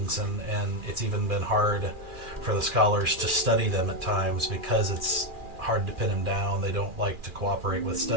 and it's even been hard for the scholars to study them at times because it's hard to pin them down. They don't like to cooperate with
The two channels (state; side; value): late; left; 2.4 ms